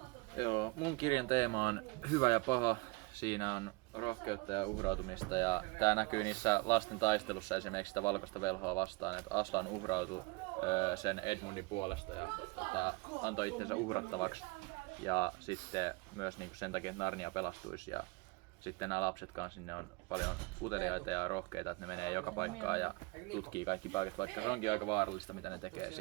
Joo, mun kirjan teema on hyvä ja paha. Siinä on rohkeutta ja uhrautumista ja tää näkyy niissä lasten taistelussa esimerkiksi sitä valkoista velhoa vastaan, että Aslan uhrautui sen Edmundin puolesta ja antoi itsensä uhrattavaksi ja sitten myös niinku sen takia, että Narnia pelastuisi ja sitten nämä lapset kanssa, ne on paljon uteliaita ja rohkeita, että ne menee joka paikkaan ja tutkii kaikki paikat, vaikka se onkin aika vaarallista, mitä ne tekee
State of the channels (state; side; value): quieter; left; 25.8 dB